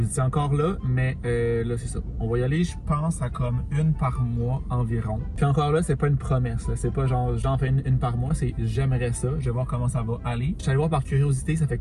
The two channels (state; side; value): identical; both; correlation 1.00